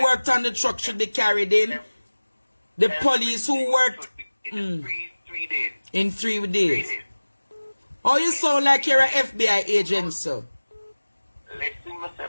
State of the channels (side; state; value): both; inverted; correlation -1.00